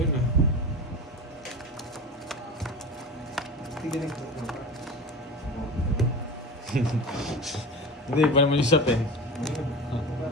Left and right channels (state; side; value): normal; both; correlation 0.30